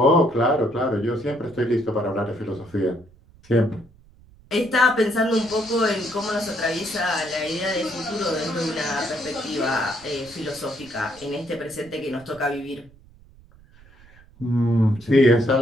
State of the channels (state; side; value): noise; right; rumble, 26 dB below the sound